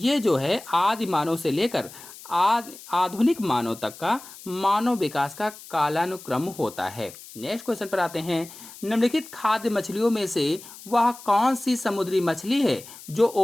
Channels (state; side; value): noise; left; hiss, 17 dB below the sound